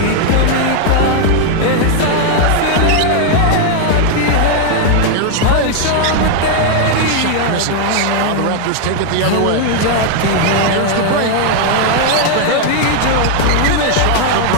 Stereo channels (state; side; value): different; both; correlation 0.00